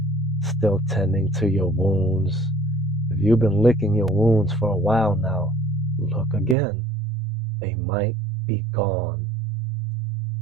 still tending to your wounds. If you've been licking your wounds for a while now, look again. They might be gone.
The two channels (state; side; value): drops out; left; at 6.6 s